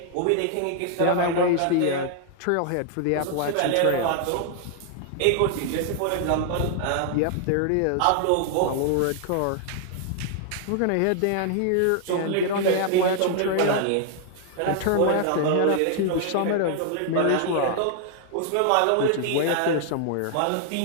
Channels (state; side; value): different; both; correlation 0.00